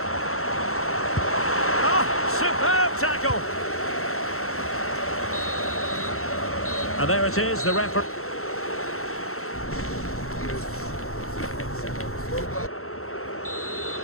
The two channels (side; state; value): right; late; 0.63 ms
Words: Oh, superb tackle. And there it is, the referee.